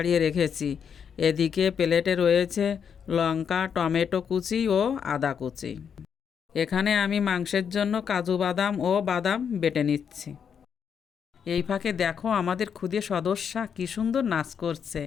রেখেছি। এদিকে প্লেটে রয়েছে লঙ্কা, টমেটো কুচি ও আদা কুচি। এখানে আমি মাংসের জন্য কাজু বাদাম ও বাদাম বেটে নিচ্ছি। এই ফাঁকে দেখো আমাদের ক্ষুদে সদস্যা কী সুন্দর নাচ করছে।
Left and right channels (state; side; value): quieter; right; 7.3 dB